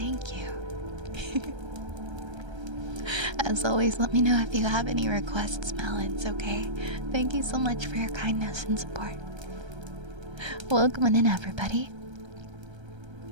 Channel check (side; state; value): left; late; 1.3 ms